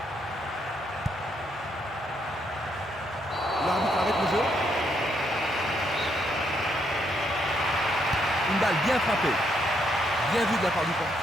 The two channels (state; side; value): normal; both; correlation 0.75